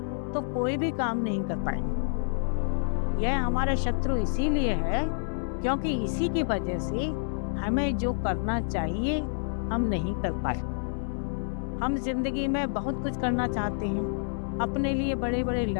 तो कोई भी काम नहीं कर पाएंगे। यह हमारा शत्रु इसीलिए है क्योंकि इसी की वजह से हमें जो करना चाहिए हम नहीं कर पाते। हम जिंदगी में बहुत कुछ करना चाहते हैं, अपने लिए बड़े बड़े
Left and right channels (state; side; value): silent; right; digital silence